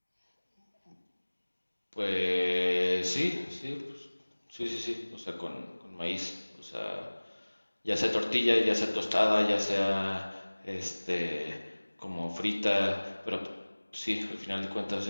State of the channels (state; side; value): inverted; both; correlation -1.00